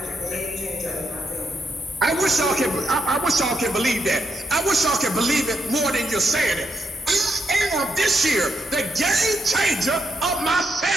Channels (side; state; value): both; normal; correlation 0.81